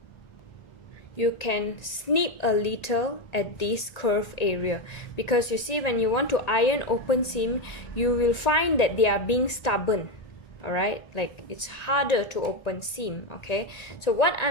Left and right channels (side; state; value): right; late; 1.9 ms